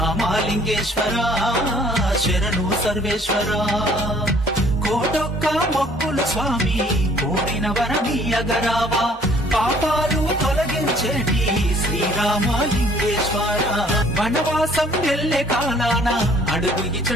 శరణు సర్వేశ్వర కోటొక్క మొక్కులు స్వామి కోరిన వరమీయగరావా పాపాలు తొలగించేటి శ్రీరామలింగేశ్వర వనవాసం వెళ్ళే కాలాన అడుగు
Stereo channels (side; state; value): both; normal; correlation 0.58